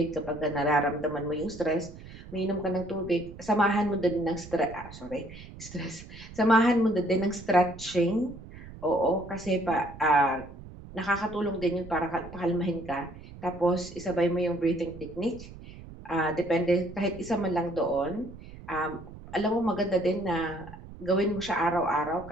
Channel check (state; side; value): noise; right; rumble, 16 dB below the sound